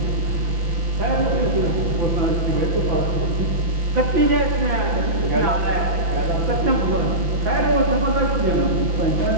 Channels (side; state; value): left; late; 5.9 ms